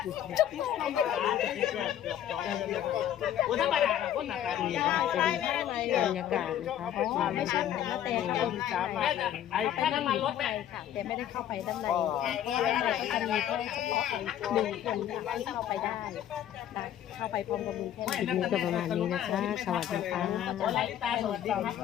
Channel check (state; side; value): quieter; right; 10.9 dB